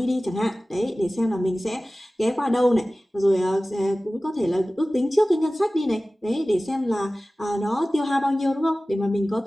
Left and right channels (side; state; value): both; normal; correlation 0.97